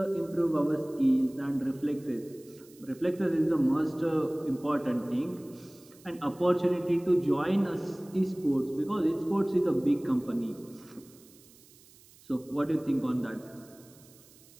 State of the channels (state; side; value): noise; right; hiss, 25 dB below the sound